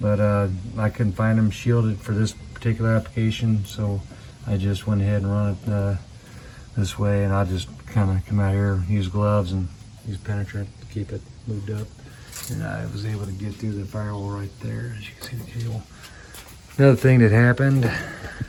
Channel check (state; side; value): identical; both; correlation 1.00